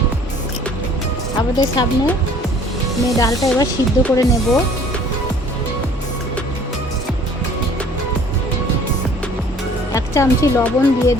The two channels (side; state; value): both; normal; correlation 0.53